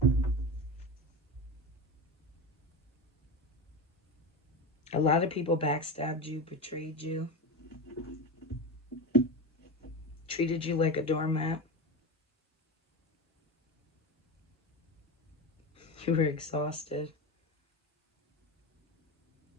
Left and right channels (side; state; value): both; normal; correlation 0.22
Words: A lot of people backstabbed you, betrayed you, treated you like a doormat. You were exhausted.